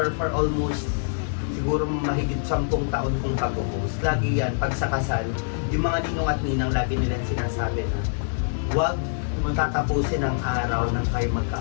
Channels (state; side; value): silent; right; 62 dB below the other